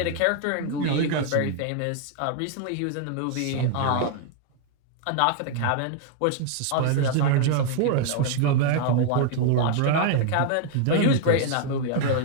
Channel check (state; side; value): different; both; correlation 0.00